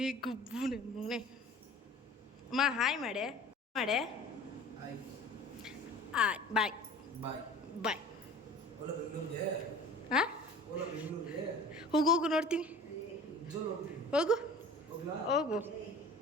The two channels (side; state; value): both; normal; correlation 0.43